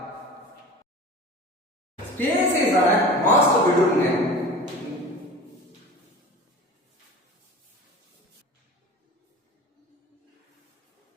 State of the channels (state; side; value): normal; both; correlation 0.37